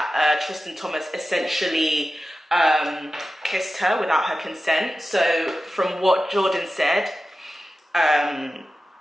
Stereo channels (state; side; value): normal; both; correlation 0.94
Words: Tristan Thomas essentially kissed her without her consent. So from what Jordyn said,